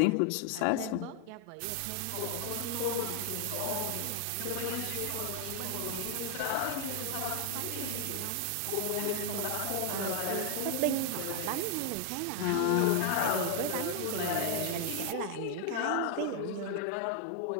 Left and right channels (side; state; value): both; different; correlation 0.00